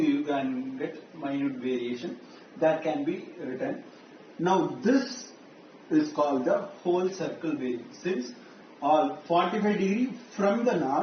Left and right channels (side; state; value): both; identical; correlation 1.00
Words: you can get minute variation that can be written. Now this is called the whole circle bearing, since all 45 degree from the